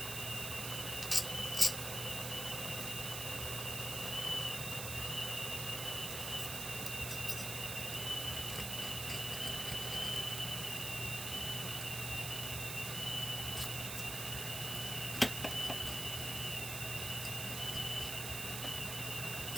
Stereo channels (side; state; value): right; noise; hiss, 3 dB below the sound